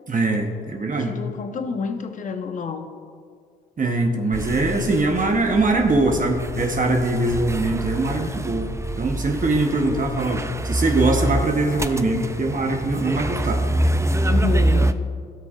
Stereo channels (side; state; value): both; normal; correlation 0.71